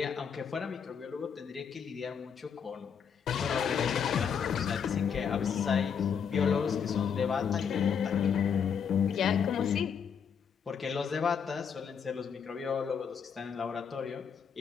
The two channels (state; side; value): quieter; right; 7.1 dB